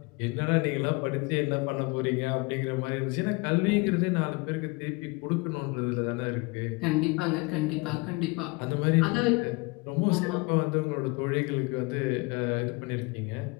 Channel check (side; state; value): right; quieter; 26.9 dB